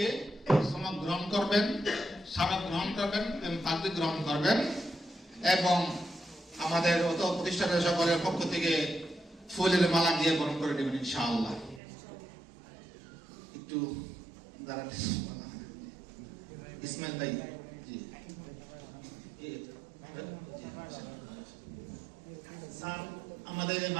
সনদ গ্রহণ করবেন, স্মারক গ্রহণ করবেন এবং পাগড়ি গ্রহণ করবেন, এবং আমাদের অত প্রতিষ্ঠানের সকলের পক্ষ থেকে ফুলের মালা দিয়ে বরণ করে দেবেন ইনশাআল্লাহ। একটু দাঁড়াতে ইসমাইল ভাই। জি, স্যার আমাদের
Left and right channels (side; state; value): left; drops out; at 11.8 s